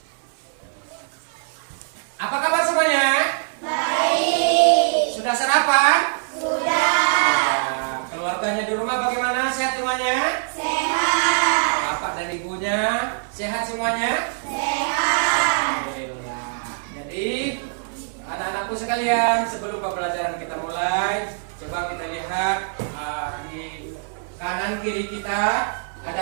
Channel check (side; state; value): left; silent; 57 dB below the other